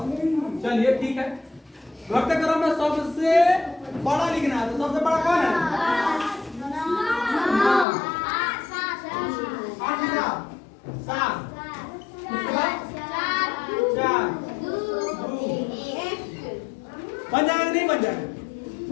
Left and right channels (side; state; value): right; drops out; at 7.9 s